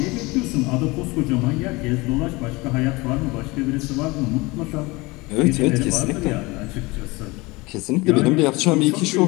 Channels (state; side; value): quieter; right; 23.6 dB